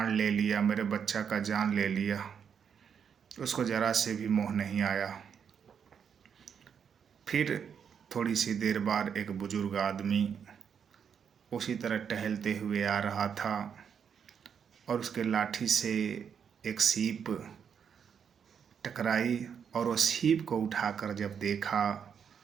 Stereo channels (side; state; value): left; quieter; 7.4 dB